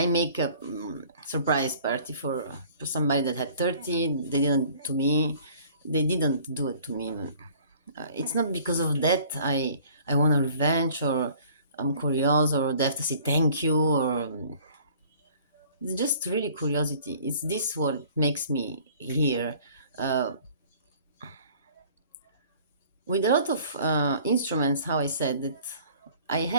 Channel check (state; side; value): inverted; both; correlation -0.52